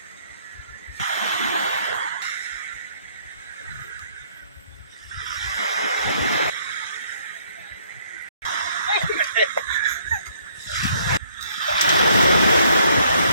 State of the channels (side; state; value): both; inverted; correlation -0.65